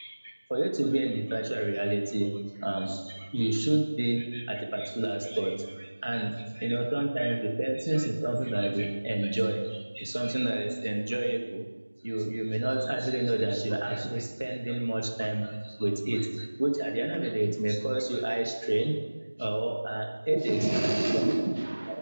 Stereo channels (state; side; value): inverted; both; correlation -1.00